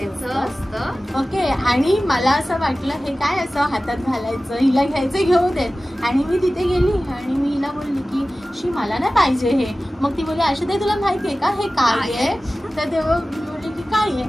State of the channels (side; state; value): both; normal; correlation 0.96